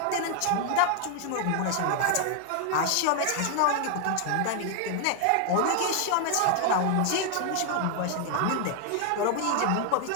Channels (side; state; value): both; different; correlation 0.00